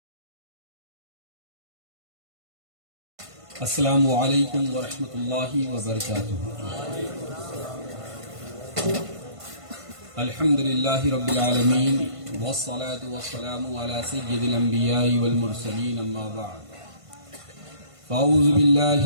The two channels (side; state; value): left; late; 1.5 ms